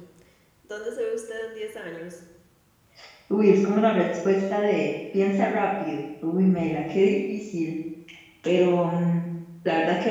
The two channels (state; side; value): identical; both; correlation 1.00